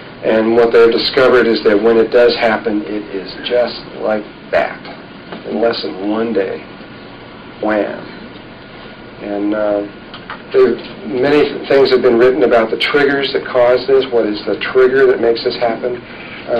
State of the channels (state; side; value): identical; both; correlation 1.00